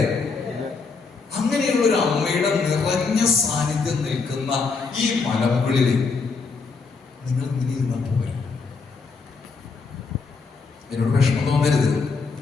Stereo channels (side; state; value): right; quieter; 4.6 dB